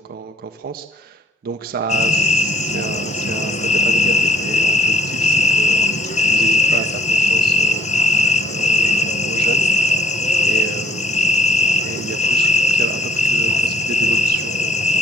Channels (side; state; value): both; normal; correlation 0.61